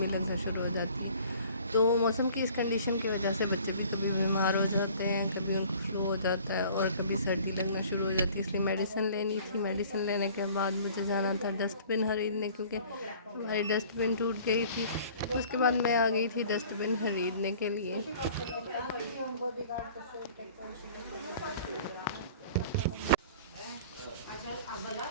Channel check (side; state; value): both; inverted; correlation -0.50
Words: लगना शुरू हो जाती है। तो मौसम की इस कंडीशन की वजह से बच्चे भी कभी बीमार हो जाते हैं, कभी उनको फ्लू हो जाता है और कभी सर्दी लगना शुरू हो जाती है। इसलिए मेडिसिन लेनी थी। मेडिसिन लेने के बाद मुझे जाना था डस्टबिन खरीदने, क्योंकि हमारी डस्टबिन टूट गई थी। उसके बाद मैं आ गई थी डस्टबिन खरीदने के लिए।